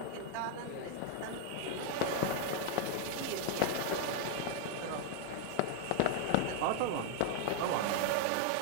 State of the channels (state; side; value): different; both; correlation 0.00